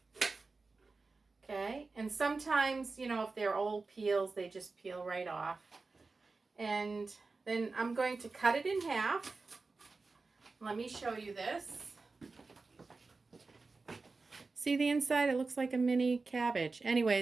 Okay, and sometimes, if they're old peels, they just peel right off. And then I'm going to cut it in half. Let me show you this. See the inside? It looks like a mini cabbage.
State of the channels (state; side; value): quieter; left; 3.9 dB